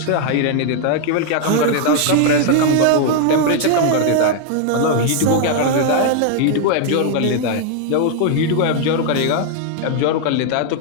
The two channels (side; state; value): both; different; correlation 0.00